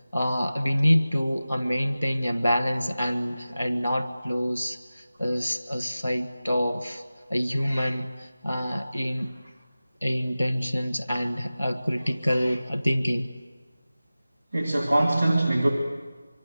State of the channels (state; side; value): inverted; both; correlation -0.96